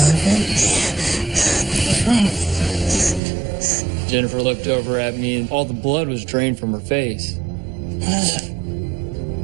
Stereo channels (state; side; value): drops out; left; at 3.2 s